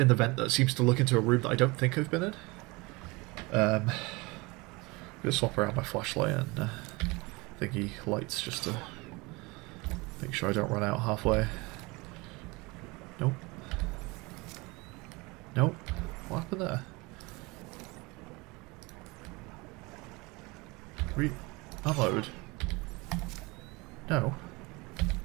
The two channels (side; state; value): left; quieter; 25.1 dB